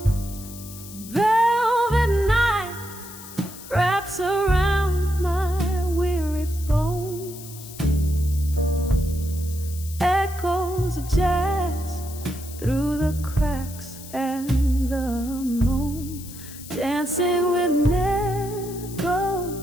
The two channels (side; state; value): left; noise; hiss, 15 dB below the sound